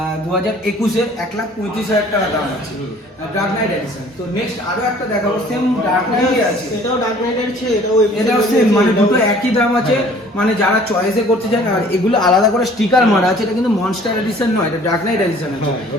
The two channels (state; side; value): normal; both; correlation 0.53